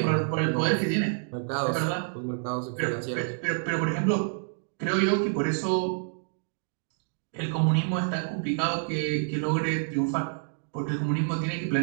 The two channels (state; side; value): silent; left; digital silence